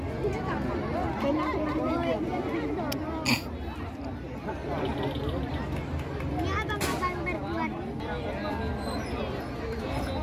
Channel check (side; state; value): both; identical; correlation 1.00